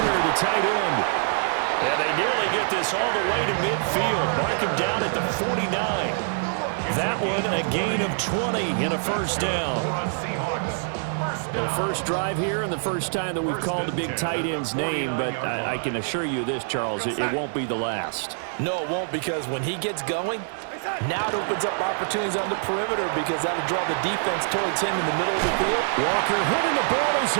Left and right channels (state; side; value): silent; left; digital silence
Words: the tight end. And they nearly get this all the way to midfield. Mark him down at the 49. That one a gain of 20 and a first down. The first drive here and the first time that we've called the big tight end's name, but I can assure you this, Charles, it won't be the last. No, it won't, because when he gets going, now it opens up opportunities on the perimeter, because that'll draw the defense towards him in the middle of the field. Walker hitting, the ball is